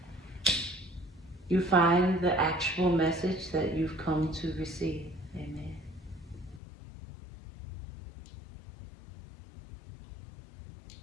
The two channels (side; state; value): right; drops out; at 6.6 s